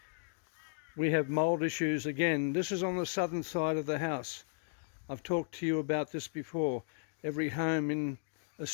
We have mold issues again. This is on the southern side of the house. I've talked to you about this before. Every home in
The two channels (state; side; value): silent; right; digital silence